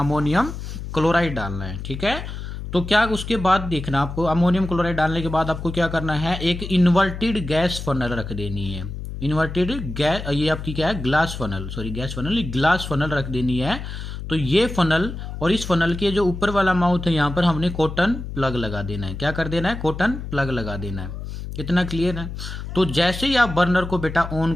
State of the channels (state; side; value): noise; left; hum, 8 dB below the sound